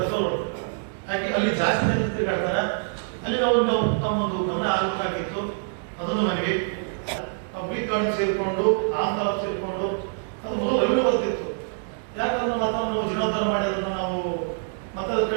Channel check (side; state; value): left; silent; digital silence